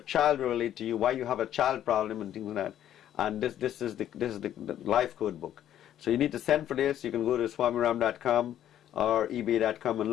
will relate to you, why you have a child problem and things like that. And this is the life code book. So you need to send for this. You can go to swamiram.com or ebay.com and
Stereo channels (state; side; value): quieter; right; 11.2 dB